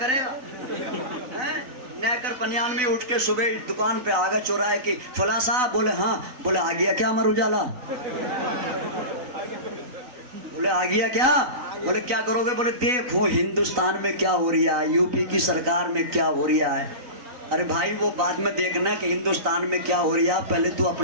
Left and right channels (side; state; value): left; late; 3.9 ms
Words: گا، نیکر پنیان میں اٹھ کے صبح دکان پہ آگا چوراہے کی، فلاں صاحب، بولے ہاں، بولے آ گیا کیا امر اجالا، بولے آ گیا کیا، بولے کیا کرو گے، بولے دیکھو ہندوستان میں کیا ہو رہا ہے، یو پی کی سرکار میں کیا ہو رہا ہے، ارے بھائی وہ بعد میں دیکھنا کہ ہندوستان میں کیا ہو رہا، پہلے تو